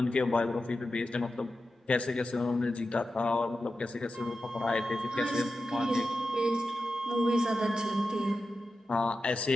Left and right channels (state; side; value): normal; both; correlation 0.91